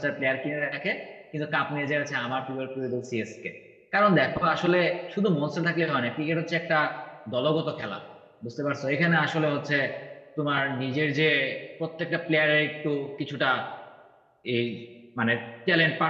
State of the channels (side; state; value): both; identical; correlation 1.00